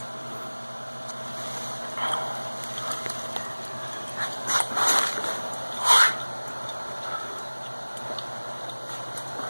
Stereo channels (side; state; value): both; inverted; correlation -1.00